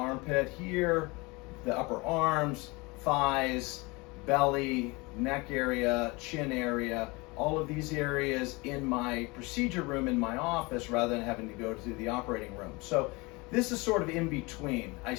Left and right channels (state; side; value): quieter; right; 25.5 dB